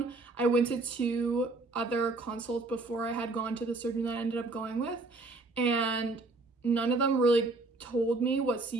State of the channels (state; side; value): quieter; left; 3.3 dB